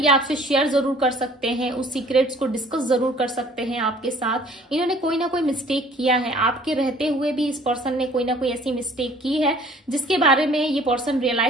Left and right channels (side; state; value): both; normal; correlation 0.54